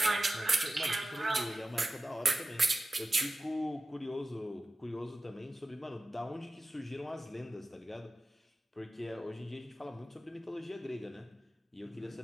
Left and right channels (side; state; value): both; normal; correlation 0.95